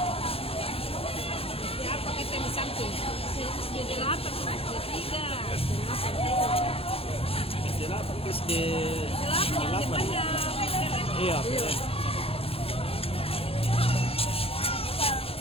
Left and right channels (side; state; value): right; late; 0.28 ms